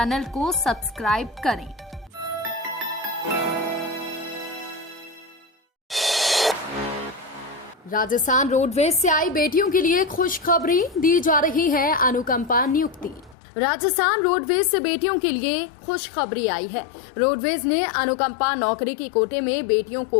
को सब्सक्राइब करें। राजस्थान रोडवेज से आई बेटियों के लिए खुशखबरी, दी जा रही है अनुकंपा नियुक्ति। राजस्थान रोडवेज से बेटियों के लिए खुशखबरी आई है। रोडवेज ने अनुकंपा नौकरी की कोटे में बेटियों को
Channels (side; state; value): right; drops out; at 13.4 s